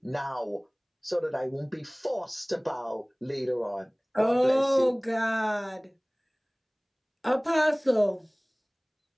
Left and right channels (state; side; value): identical; both; correlation 1.00